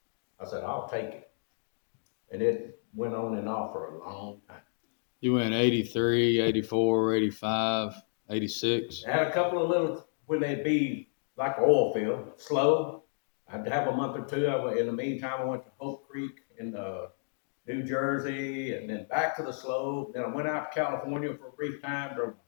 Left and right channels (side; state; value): right; silent; digital silence